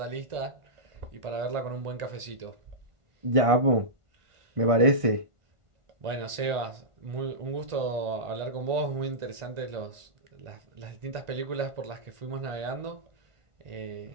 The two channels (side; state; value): left; late; 1.5 ms